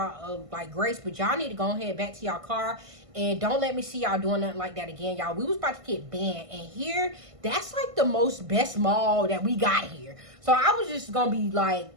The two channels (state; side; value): late; left; 1.5 ms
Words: like grace. But y'all need to go ahead back to y'all car. And don't let me see y'all doing nothing like that again, y'all. We was about to get banned. And here, that's like the best mall that we got here. So I was just going to be like